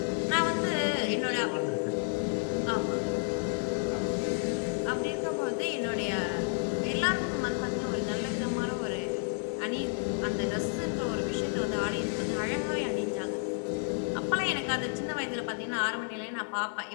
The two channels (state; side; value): silent; right; 57 dB below the other